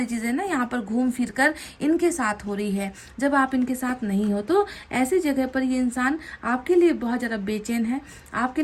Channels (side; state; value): both; identical; correlation 1.00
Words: चीज़ें ना यहाँ पर घूम फिर कर इनके साथ हो रही है। जब आप इनके साथ नहीं हो तो ऐसी जगह पर ये इंसान आपके लिए बहुत ज़्यादा बेचैन है, आपके